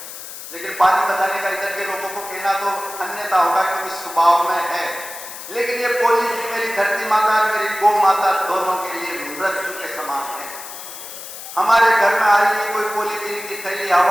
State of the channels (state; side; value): noise; left; hiss, 12 dB below the sound